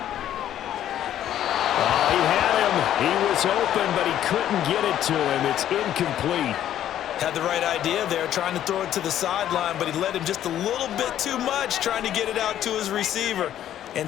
Oh, he had him. He was open, but he couldn't get it to him. It's incomplete. Had the right idea there, trying to throw it to the sideline, but he led him just a little bit too much, trying to get it out to his receiver.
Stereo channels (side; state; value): right; quieter; 11.4 dB